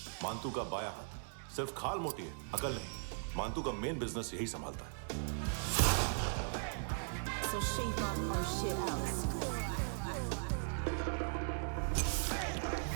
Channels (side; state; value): left; silent; digital silence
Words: मानतू का बाया हाथ। सिर्फ खाल मोटी है, अकल नहीं। मानतू का मेन बिजनेस यही संभालता है। So shape up our shit out.